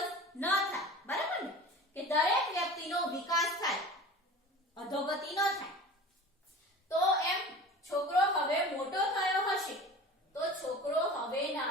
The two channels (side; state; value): both; normal; correlation 0.38